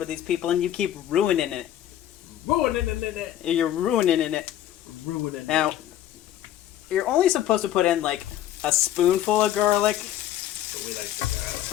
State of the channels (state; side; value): quieter; right; 12.0 dB